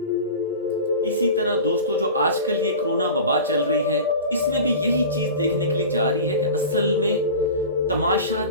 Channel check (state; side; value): inverted; both; correlation -0.34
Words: इसी तरह दोस्तों, जो आजकल ये कोरोना वबा चल रही है, इसमें भी यही चीज देखने के लिए जा रही है कि असल में तमाशा